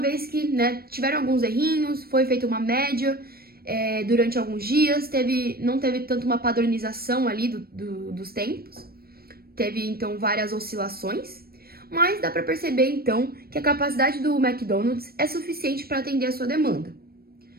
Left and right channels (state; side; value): late; left; 0.44 ms